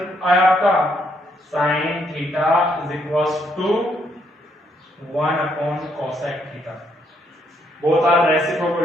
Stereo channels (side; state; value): both; normal; correlation 0.73